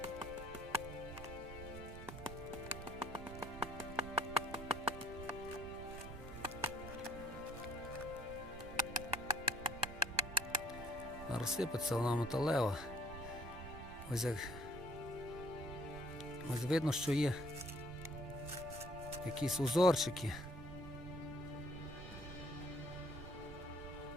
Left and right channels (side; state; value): right; noise; rumble, 12 dB below the sound